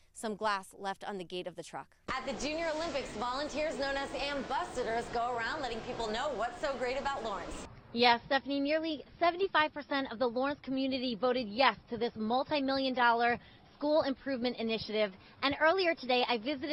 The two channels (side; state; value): both; identical; correlation 1.00